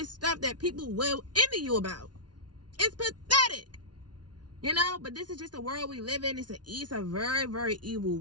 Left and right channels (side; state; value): left; late; 0.69 ms